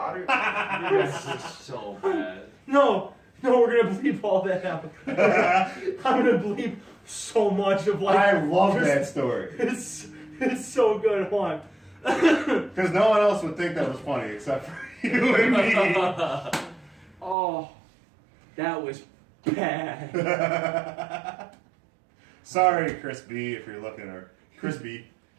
You guys are so bad. No, we're gonna bleep all that out. I'm gonna bleep so much of like. I love that story It's so good. One. because no one else would think that was funny except for you and me. Oh, that was bad. Sorry, Chris B, if you're looking, or Chris B.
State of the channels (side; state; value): left; drops out; at 17.4 s